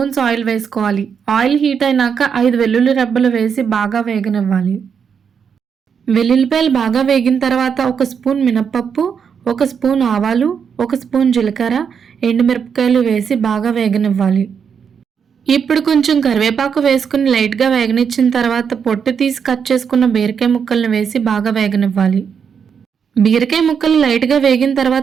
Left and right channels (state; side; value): quieter; left; 6.9 dB